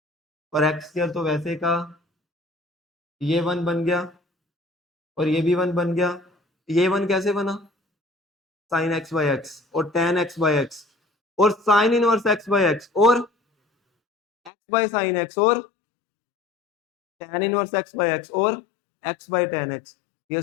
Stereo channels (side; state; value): right; drops out; at 14.5 s